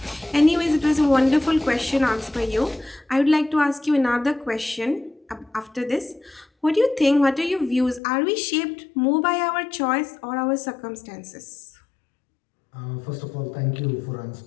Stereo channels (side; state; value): right; drops out; at 8.0 s